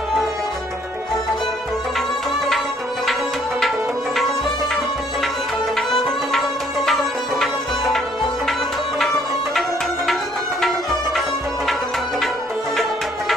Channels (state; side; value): normal; both; correlation 0.64